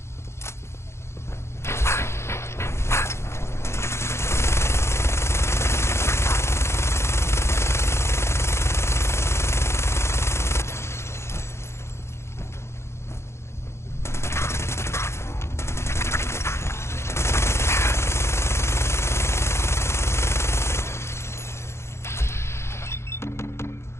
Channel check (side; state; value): right; late; 0.13 ms